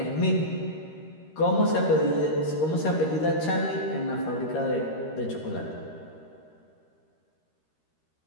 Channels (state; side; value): late; right; 13 ms